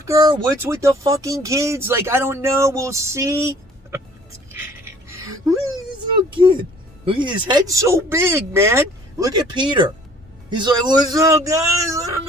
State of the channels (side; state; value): both; normal; correlation 0.54